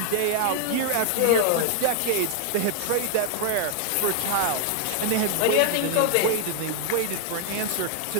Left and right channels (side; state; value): both; different; correlation 0.00